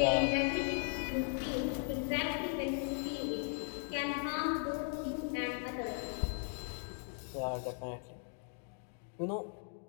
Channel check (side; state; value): right; silent; 53 dB below the other